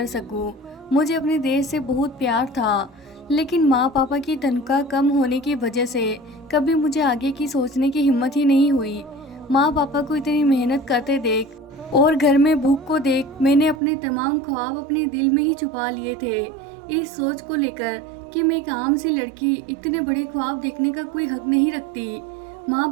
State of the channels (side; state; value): left; drops out; at 13.8 s